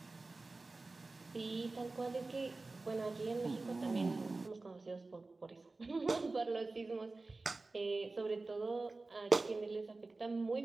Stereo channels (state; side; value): quieter; left; 3.4 dB